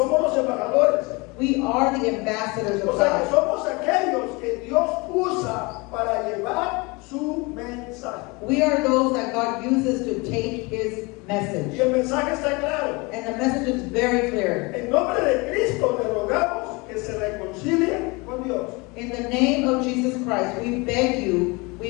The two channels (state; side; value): quieter; right; 26.6 dB